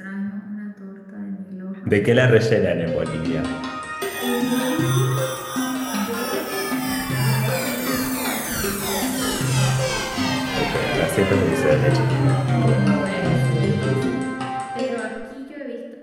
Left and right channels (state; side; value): identical; both; correlation 1.00